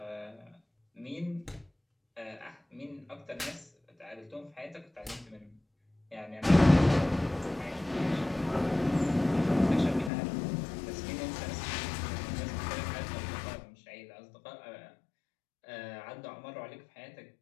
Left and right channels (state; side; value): drops out; right; at 10.1 s